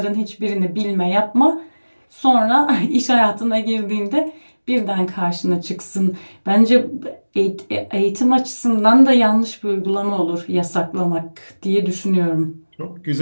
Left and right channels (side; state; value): both; inverted; correlation -1.00